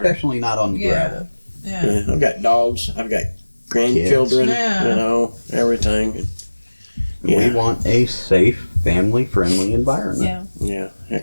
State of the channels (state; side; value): inverted; both; correlation -1.00